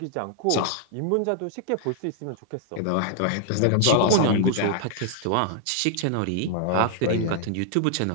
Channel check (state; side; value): different; both; correlation -0.01